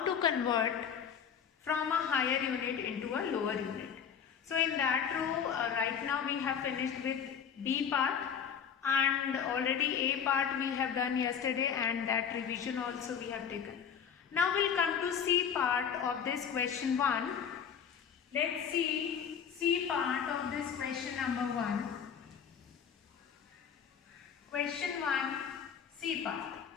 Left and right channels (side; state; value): right; quieter; 7.6 dB